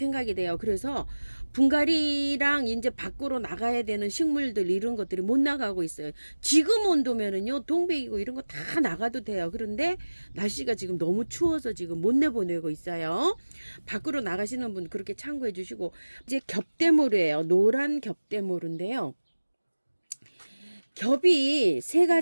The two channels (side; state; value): both; inverted; correlation -1.00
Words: 돼요. 그래서 분갈이랑 이제 밖으로 나가야 되는 식물들 이런 것들이 못 나가고 있어요. 지금 온도면은요 동백이고 이런 거 다 나가도 돼요. 그런데 날씨가 지금 너무 추워서 지금 못 내보내고 있어요. 밖으로 나가시는 분 그렇게 참고해 주시고 이제 겹대모루예요. 노란 겹대모루인데요. 겹이 세